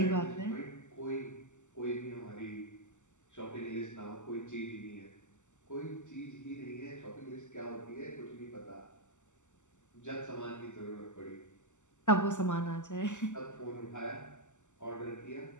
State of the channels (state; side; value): late; right; 0.84 ms